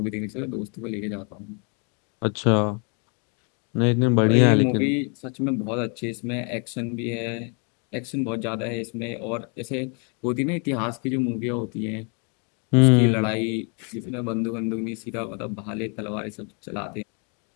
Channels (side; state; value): right; quieter; 37.0 dB